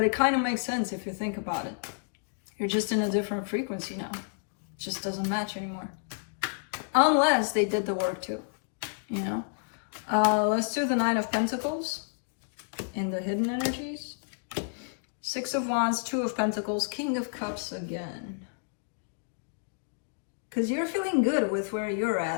it kind of makes sense if you think about it. You're just in a different frequency now. It just doesn't match anymore. Unless they did the work too, you know. Let's do the Nine of Pentacles in the hidden energies. Six of Wands, Two of Pentacles, King of Cups again. Because you're feeling good with where you're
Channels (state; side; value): silent; right; digital silence